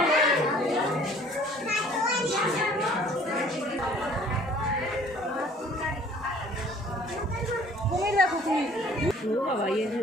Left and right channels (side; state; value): both; normal; correlation 0.54